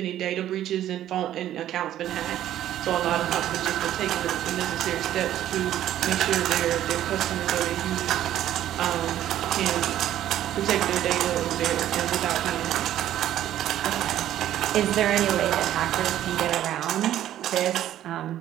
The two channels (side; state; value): left; quieter; 12.2 dB